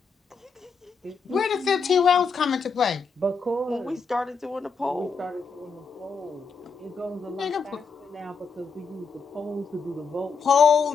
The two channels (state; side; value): quieter; right; 5.0 dB